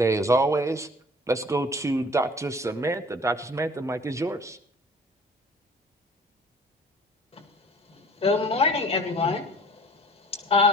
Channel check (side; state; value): both; normal; correlation 0.48